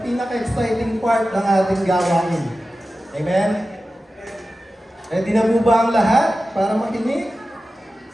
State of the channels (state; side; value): normal; both; correlation 0.94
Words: pinaka-exciting part ng ating gawain. Amen? Ready na po ba ang lahat para makinig?